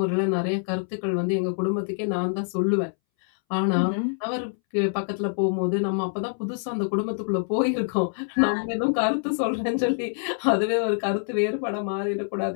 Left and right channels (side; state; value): right; silent; 61 dB below the other